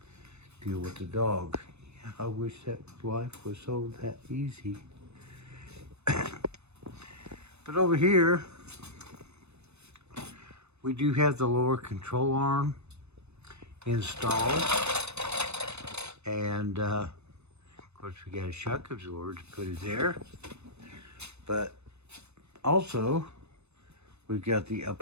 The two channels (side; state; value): left; late; 0.81 ms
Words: deal with the dog. Yeah, I wish that life was so that easy. But over here, we do have the lower control arm installed. And, of course, we got a shock absorber to put it there. But also, we've got the